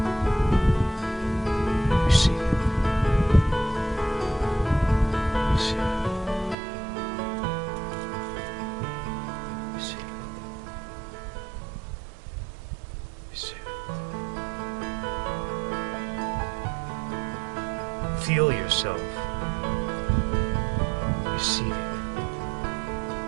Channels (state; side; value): drops out; left; at 6.6 s